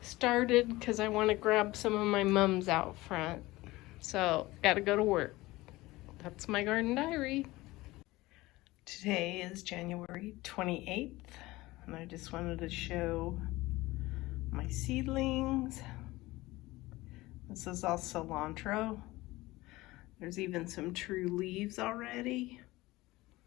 because I want to grab some of my mums out front. So gotta go to work. That's my garden diary. Today is January 28th, and I just wanted to show my seedlings. This is all cilantro. There's even some true leaves already.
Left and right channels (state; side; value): quieter; right; 19.5 dB